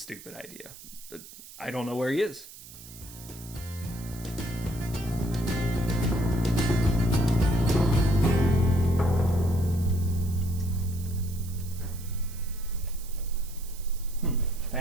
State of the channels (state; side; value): noise; right; hiss, 17 dB below the sound